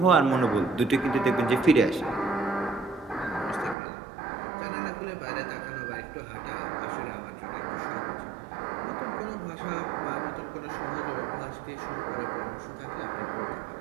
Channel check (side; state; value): left; drops out; at 3.8 s